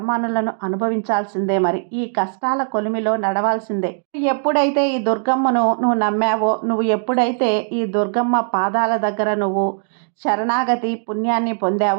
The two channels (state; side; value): silent; left; digital silence